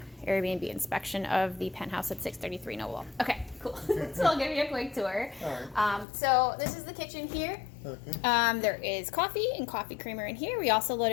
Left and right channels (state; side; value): drops out; right; at 6.1 s